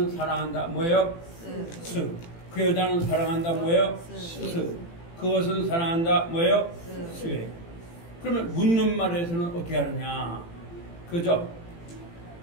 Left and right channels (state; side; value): late; right; 18 ms